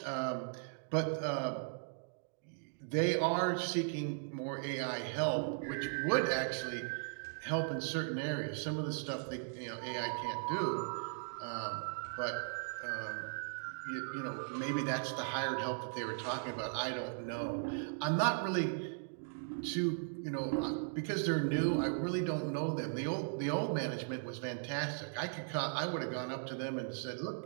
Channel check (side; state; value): left; silent; digital silence